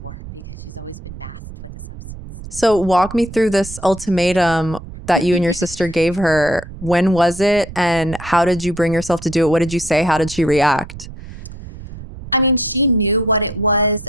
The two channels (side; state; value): right; noise; rumble, 13 dB below the sound